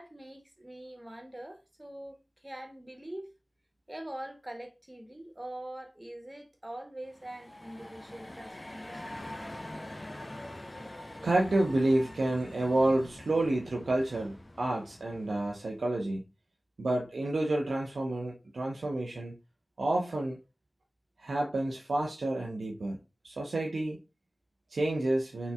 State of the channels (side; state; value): both; normal; correlation 0.97